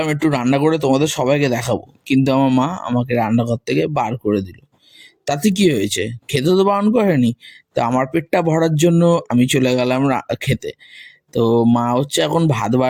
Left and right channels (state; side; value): identical; both; correlation 1.00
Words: একটু রান্না করে তোমাদের সবাইকে দেখাবো, কিন্তু আমার মা আমাকে রান্নাঘর থেকে বার করে দিল। তাতে কি হয়েছে, খেতে তো বারণ করেনি। তো আমার পেটটা ভরার জন্য আমি চলে গেলাম খেতে। তো মা হচ্ছে এখন ভাত